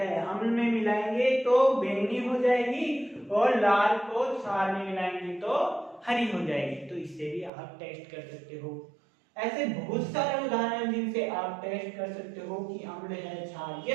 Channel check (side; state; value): left; drops out; at 7.5 s